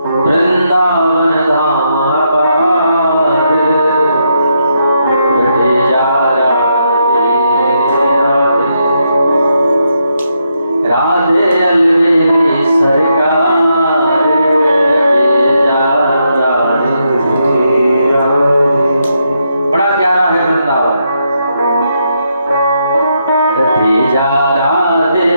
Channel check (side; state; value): both; inverted; correlation -0.80